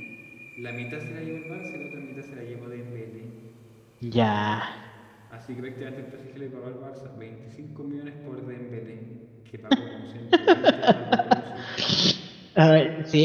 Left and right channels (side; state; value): both; identical; correlation 1.00